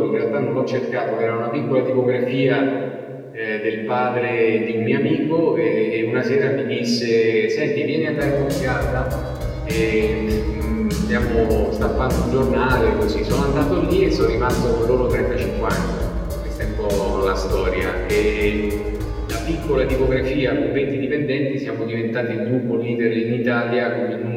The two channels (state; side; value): identical; both; correlation 1.00